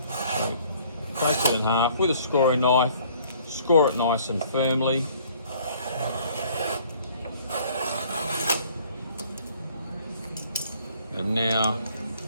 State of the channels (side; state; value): both; inverted; correlation -0.57